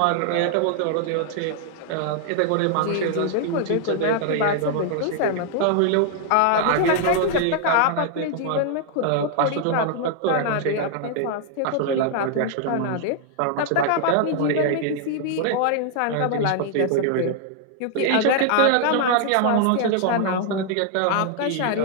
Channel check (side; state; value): both; different; correlation 0.00